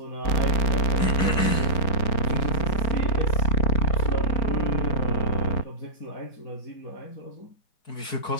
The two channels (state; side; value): late; right; 4.7 ms